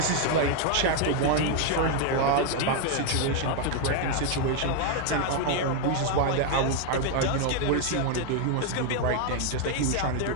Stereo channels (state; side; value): different; both; correlation 0.01